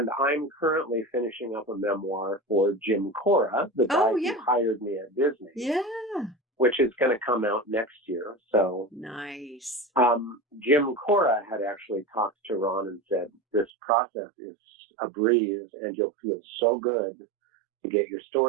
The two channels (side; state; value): left; drops out; at 13.7 s